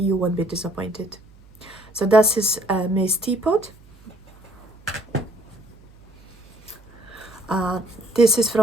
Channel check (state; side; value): noise; right; hum, 25 dB below the sound